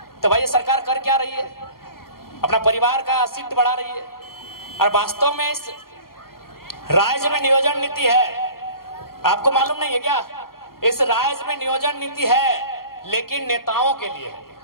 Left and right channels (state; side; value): late; right; 0.93 ms